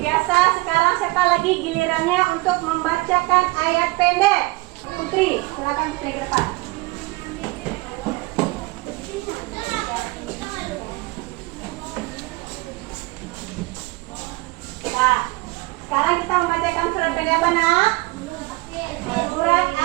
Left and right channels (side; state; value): left; quieter; 23.0 dB